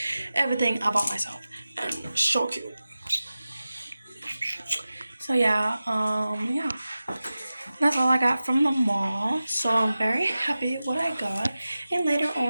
Everything I bought myself. And so cute. So yeah, that's all I got from the mall. So I'm very happy with what I got. And later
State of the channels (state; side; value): inverted; both; correlation -0.95